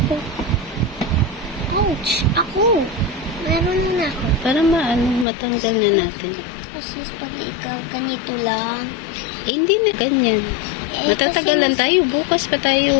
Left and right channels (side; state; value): right; drops out; at 5.2 s